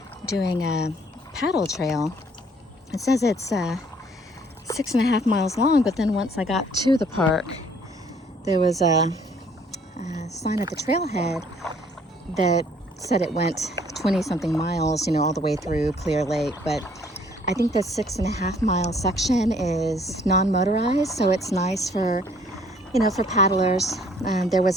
doing a paddle trail. It says it's 6.5 miles long, but then once I got to the park, there was a sign at the trailhead that said it went 20-something miles, all the way through Clear Lake. But I think the 6.5 mile section is non-motorized, so it's nice for, for paddlers. There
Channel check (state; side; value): normal; both; correlation 0.60